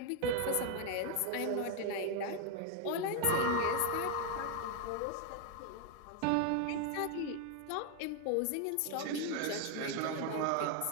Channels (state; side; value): different; both; correlation 0.01